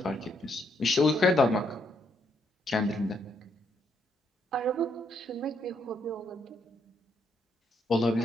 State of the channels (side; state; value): both; normal; correlation 0.75